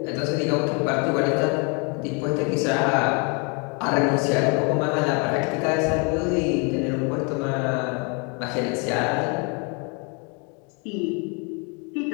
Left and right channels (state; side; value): quieter; right; 34.0 dB